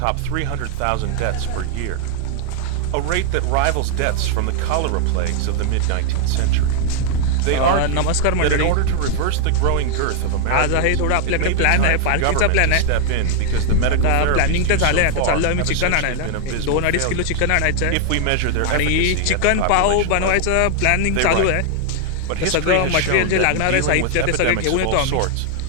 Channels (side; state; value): both; different; correlation 0.00